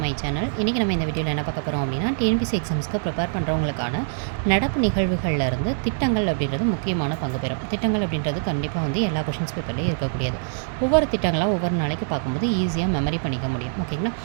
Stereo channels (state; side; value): silent; left; digital silence